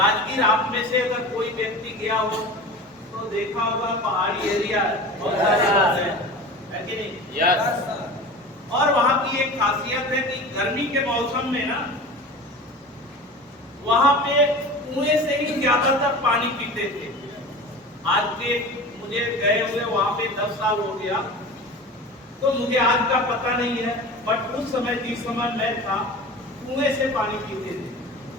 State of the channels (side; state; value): both; normal; correlation 0.34